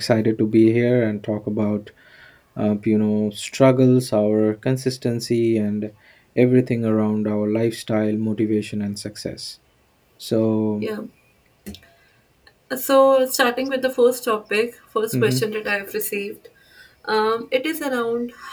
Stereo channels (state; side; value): identical; both; correlation 1.00